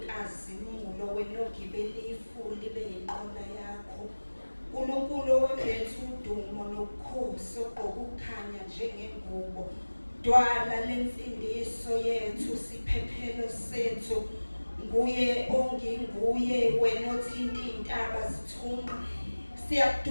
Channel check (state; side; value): inverted; both; correlation -1.00